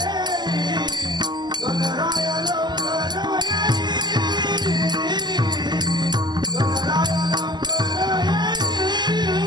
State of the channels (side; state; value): left; late; 0.21 ms